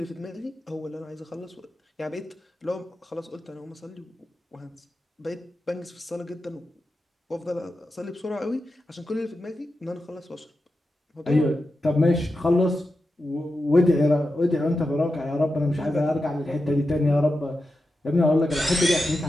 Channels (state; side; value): normal; both; correlation 0.90